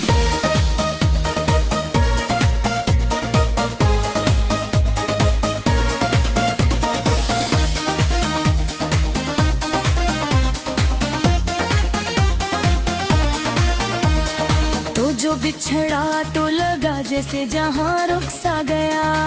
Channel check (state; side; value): identical; both; correlation 1.00